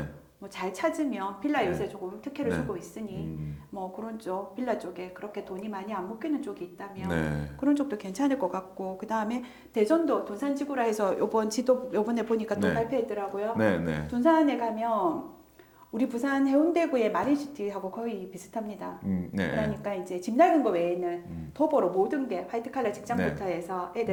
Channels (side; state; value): both; identical; correlation 1.00